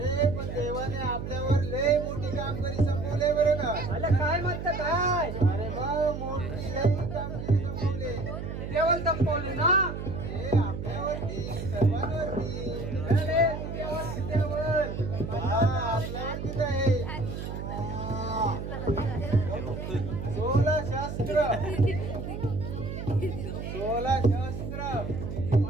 पण देवाने आपल्यावर लय मोठी कामगिरी संपवले बरं का. आला काय म्हणत काय, अरे मग मोठी लय कामगिरी संपवले. देवल संपवले ना. हे आपल्यावरती, सर्वांवरती. अरे तू देवल देवल. हा आपल्यावरतीच आहे. 16 शास्त्र, 16 शास्त्र.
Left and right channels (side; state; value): right; noise; hum, 6 dB below the sound